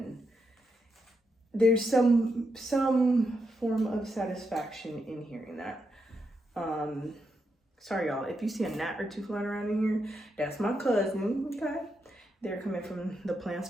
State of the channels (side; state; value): both; normal; correlation 0.83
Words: there's some form of satisfaction in hearing that. Sorry y'all, if you see a gnat or two flying around in here, that's my cousin, okay? They're coming from the plants